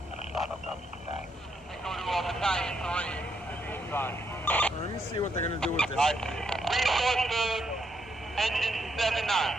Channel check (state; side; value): normal; both; correlation 0.77